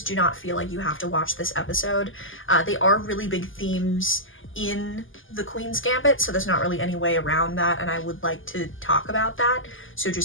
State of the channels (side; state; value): right; late; 0.58 ms